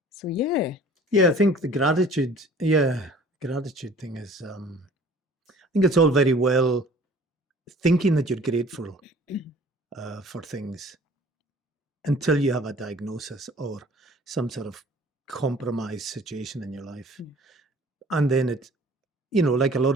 So yeah. Yeah, I think the gratitude thing is, I think it's all very well thinking that you're grateful for things until you have a diagnosis or some sort of compromised situation in your life. And then it, like a lot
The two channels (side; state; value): both; normal; correlation 0.50